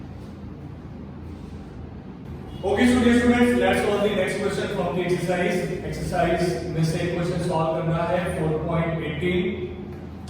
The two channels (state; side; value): identical; both; correlation 1.00